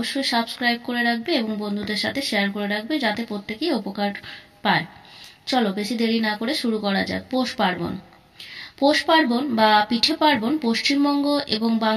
সাবস্ক্রাইব করে রাখবে এবং বন্ধুদের সাথে শেয়ার করে রাখবে, যাতে প্রত্যেকেই উপকার পায়। চলো বেশি দেরি না করে শুরু করা যাক। পৌষ পার্বণ। পৌষ পার্বণ বা পিঠে পার্বণ পশ্চিমবঙ্গ এবং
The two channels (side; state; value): both; identical; correlation 1.00